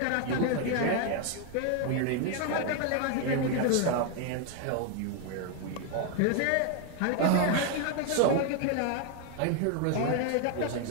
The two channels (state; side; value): different; both; correlation 0.01